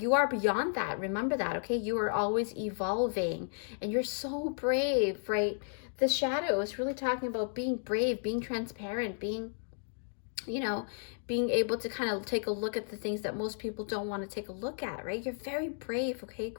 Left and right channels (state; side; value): silent; right; digital silence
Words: you are beyond that. Remember that, okay? You are always evolving, and you're so brave, right? The shadow is really talking about being brave, being transparent, being, you know, being able to kind of take a look at the things that most people don't want to take a look at, right? You're very brave, okay?